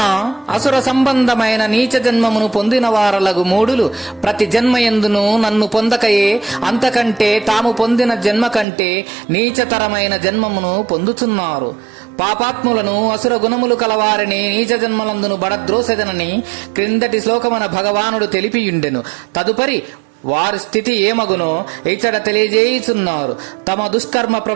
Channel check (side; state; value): left; drops out; at 8.7 s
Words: అసుర సంబంధమైన నీచ జన్మమును పొందిన వారలగు మూడులు ప్రతి జన్మయందును నన్ను పొందకయే అంతకంటే తాము పొందిన జన్మ కంటే నీచతరమైన జన్మమును పొందుతున్నారు. పాపాత్ములను అసుర గుణములు కలవారిని నీచ జన్మలందును బడద్రోసెదనని క్రిందటి శ్లోకమున భగవానుడు తెలిపియుండెను. తదుపరి వారి స్థితి ఏమగునో ఇచ్చట తెలియజేయుచున్నారు. తమ దుష్కర్మ